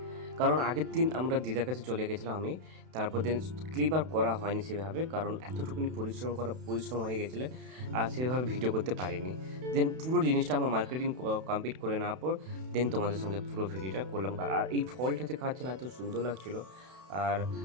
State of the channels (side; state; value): left; late; 32 ms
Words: কারণ আগের দিন আমরা দিদার কাছে চলে গেছিলাম আমি, তারপর দিন ক্লিপ আর করা হয়নি সেভাবে, কারণ এতটুকুনি পরিশ্রম হয়ে গেছিলো আর সেভাবে ভিডিও করতে পারিনি। দেন পুরো জিনিসটা আমার মার্কেটিং কমপ্লিট করে নেওয়ার পর দেন তোমাদের সঙ্গে পুরো ভিডিওটা করলাম। আর এই ফলটা যে খাচ্ছিলাম এত সুন্দর লাগছিলো। আর